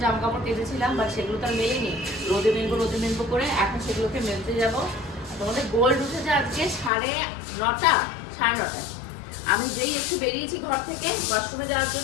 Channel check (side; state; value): right; drops out; at 6.9 s